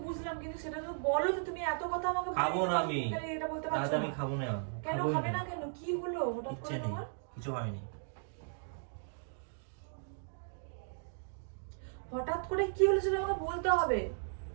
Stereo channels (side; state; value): left; silent; digital silence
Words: বুঝলাম, কিন্তু সেটা তো বলো যে তুমি এত কথা আমাকে খাবো না আমি, এটা বলতে রাতে পারছো আমি না। খাবো না। কেন খাবোই খাবে না, না? কেন কি হলো হঠাৎ ইচ্ছে করে নেই, তোমার? কিছু হয়নি। হঠাৎ করে কি হলো সেটা আমাকে বলতে হবে।